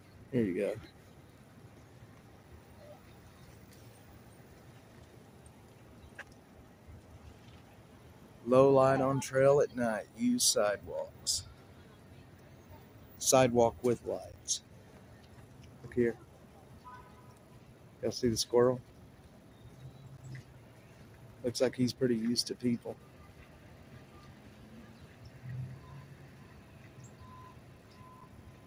here you go. Low light on trail at night. Use sidewalks. Sidewalk with lights. Look here. Y'all see the squirrel? Looks like he's pretty used to people.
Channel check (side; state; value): both; identical; correlation 1.00